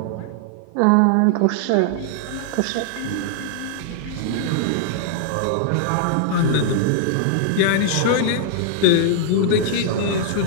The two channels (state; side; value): different; both; correlation -0.01